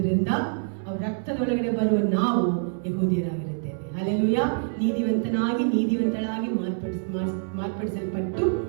ಅವ್ರ ರಕ್ತದೊಳಗಡೆ ಬರುವ ನಾವು ಯಹೂದಿಯರಾಗಿರುತ್ತೇವೆ. ಹಲ್ಲೆಲೂಯಾ. ನೀತಿವಂತಳಾಗಿ ಮಾರ್ಪಡಿಸಲ್ಪಟ್ಟು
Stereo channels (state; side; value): silent; left; 59 dB below the other